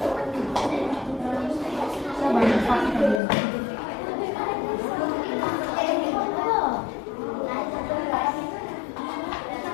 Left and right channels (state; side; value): drops out; right; at 3.2 s